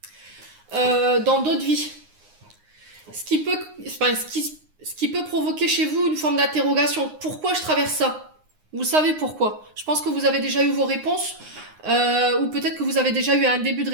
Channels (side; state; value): left; late; 9.7 ms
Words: dans d'autres vies. Ce qui peut provoquer chez vous une forme d'interrogation. Pourquoi je traverse ça? Vous savez pourquoi. Je pense que vous avez déjà eu vos réponses, ou peut-être que vous avez déjà eu un début de